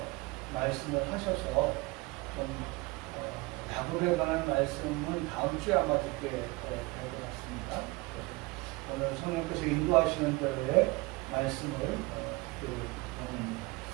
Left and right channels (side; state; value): left; quieter; 24.1 dB